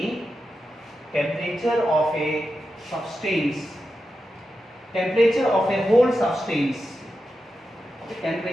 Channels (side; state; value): both; normal; correlation 0.89